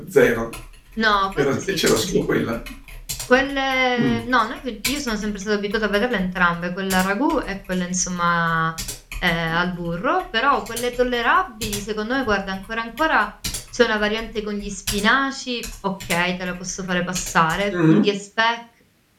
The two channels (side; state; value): both; identical; correlation 1.00